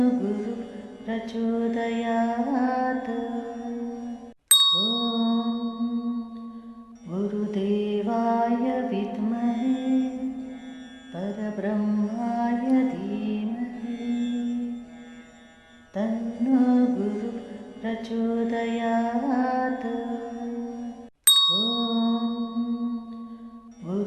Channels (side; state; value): both; identical; correlation 1.00